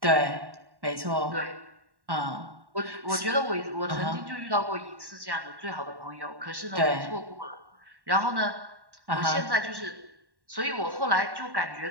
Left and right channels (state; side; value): late; left; 1.1 ms